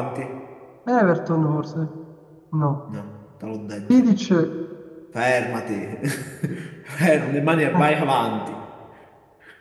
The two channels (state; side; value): identical; both; correlation 1.00